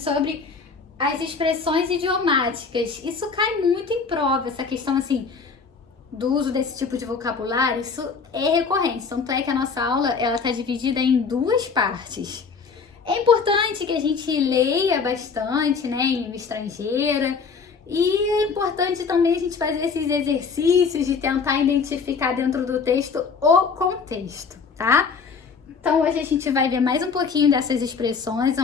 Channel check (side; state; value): right; quieter; 5.3 dB